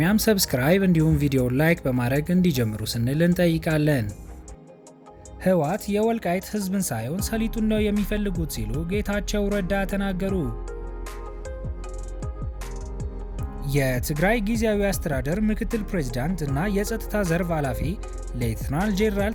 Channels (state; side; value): identical; both; correlation 1.00